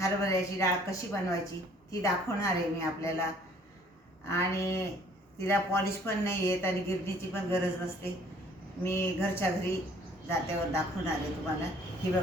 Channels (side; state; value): both; normal; correlation 0.58